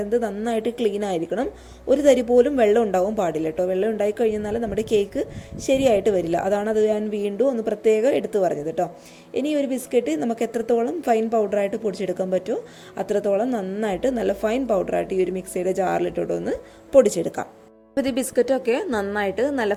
നന്നായിട്ട് ക്ലീൻ ആയിരിക്കണം. ഒരു തരി പോലും വെള്ളം ഉണ്ടാവാൻ പാടില്ല കേട്ടോ. വെള്ളം ഉണ്ടായി കഴിഞ്ഞാൽ നമ്മുടെ കേക്ക് ശരിയായിട്ട് വരില്ല. അതാണ് അത് ഞാൻ വീണ്ടും ഒന്ന് പ്രത്യേകം എടുത്തു പറഞ്ഞത് കേട്ടോ. ഇനി ഒരു ബിസ്ക്കറ്റ് നമുക്ക് എത്രത്തോളം ഫൈൻ പൗഡറായിട്ട് പൊടിച്ചെടുക്കാൻ പറ്റുമോ അത്രത്തോളം നന്നായിട്ട് നല്ല ഫൈൻ പൗഡറായിട്ട് ഈ ഒരു മിക്സിയുടെ ജാറിലിട്ടോട്ടൊന്ന് പൊടിച്ചെടുക്കാം. അപ്പോൾ ഈ ബിസ്ക്കറ്റൊക്കെ നന്നായിട്ട് നല്ല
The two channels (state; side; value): identical; both; correlation 1.00